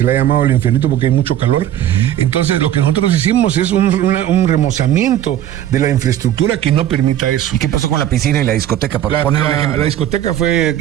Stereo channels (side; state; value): left; quieter; 11.7 dB